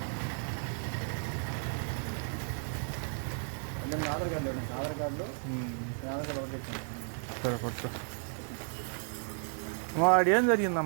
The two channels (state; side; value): silent; left; 55 dB below the other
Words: అంటే ఆధార్ కార్డు ఆధార్ కార్డులో ఆధార్ కార్డు ఒకటి చెప్తాను. సరే కొత్త వాడు ఏం